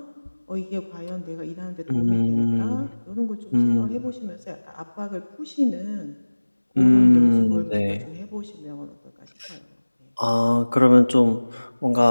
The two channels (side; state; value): both; inverted; correlation -1.00